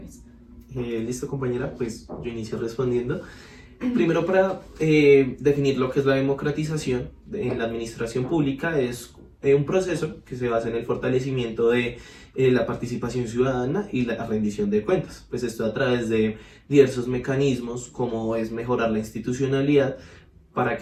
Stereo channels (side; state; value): both; identical; correlation 1.00